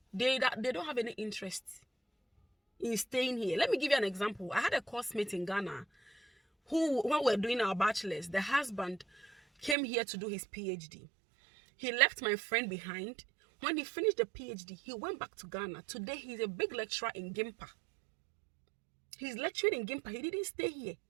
They don't have any interest in staying here. Let me give you an example. I had a course mate in Ghana who, when we were doing our bachelor's, the husband came here to do his PhD. He left my friend behind. When he finished the PhD, he went back to Ghana. Today, he's a big lecturer in Gimpa. He's lecturing in Gimpa. He didn't stay here.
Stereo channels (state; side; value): drops out; left; at 9.8 s